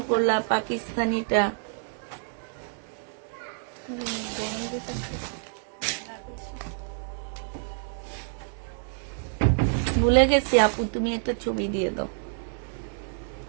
করলাম পাকিস্তানিটা। ভুলে গেছি আপু, তুমি একটা ছবি দিয়ে দাও।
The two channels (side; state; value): left; silent; 59 dB below the other